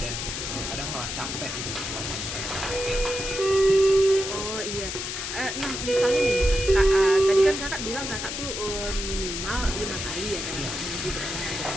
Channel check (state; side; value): noise; left; hiss, 5 dB below the sound